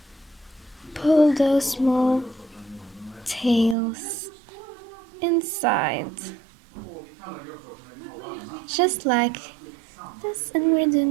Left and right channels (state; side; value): drops out; left; at 3.8 s